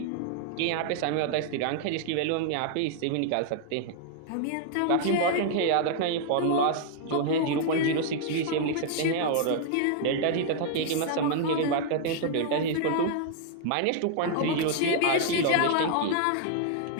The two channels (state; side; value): different; both; correlation -0.01